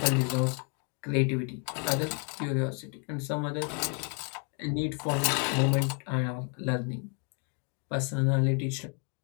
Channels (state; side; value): quieter; right; 39.0 dB